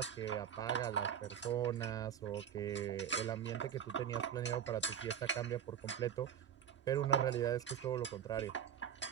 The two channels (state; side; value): quieter; left; 8.8 dB